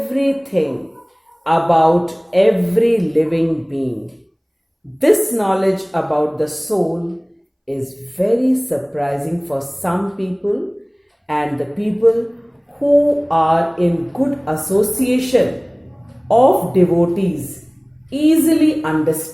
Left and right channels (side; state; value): both; identical; correlation 1.00